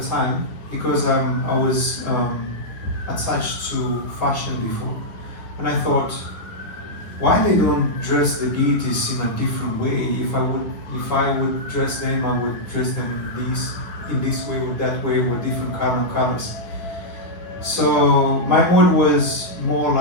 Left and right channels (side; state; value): right; late; 9.7 ms